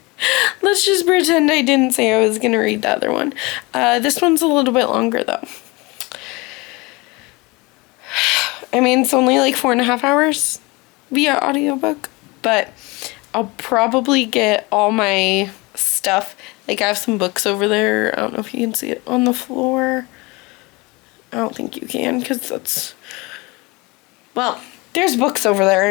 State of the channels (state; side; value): quieter; right; 24.9 dB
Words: pretend I didn't say I was gonna read the other one. This one's a little bit longer though. I mean, it's only like 4.5 hours via audiobook, but I'll probably get all my stuff. Like, I have some books over there. I don't know if you can see it on the floor. I don't think you can, because that's, well, there's books over there